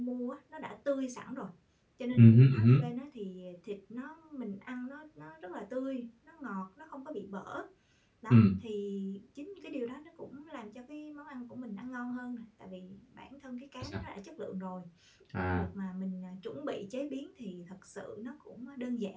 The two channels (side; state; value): both; identical; correlation 1.00